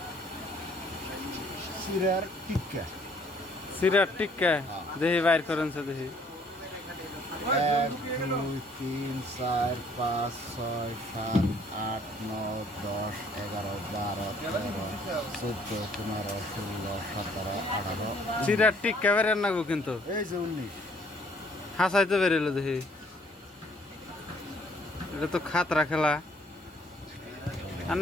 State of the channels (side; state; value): both; normal; correlation 0.62